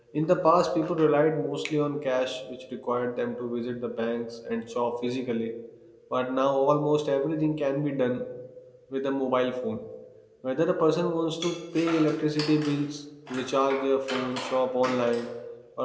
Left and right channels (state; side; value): identical; both; correlation 1.00